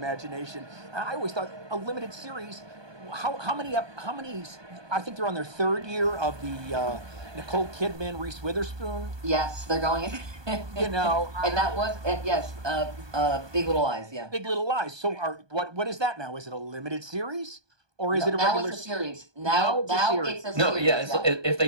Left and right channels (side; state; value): left; late; 1.2 ms